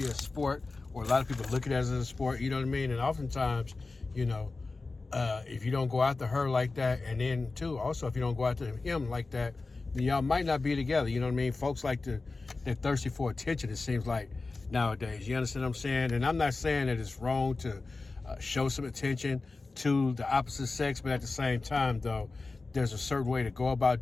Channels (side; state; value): right; quieter; 3.6 dB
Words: a sport, or a lot of people look at it as a sport, you know what I mean? And oftentimes, if you don't go after her like that, and then too, also if you don't go after him like that, then y'all might not be together, you know what I mean? Folks they're thirsty for attention, it seems like, nowadays. You understand what I'm saying? And I'm not saying that it's wrong to show some attention to the opposite sex, but at the same time, though, there's a certain way to go